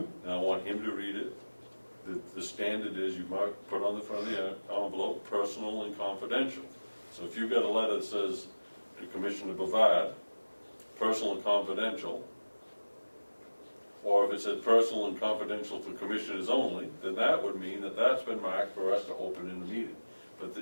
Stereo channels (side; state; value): both; inverted; correlation -1.00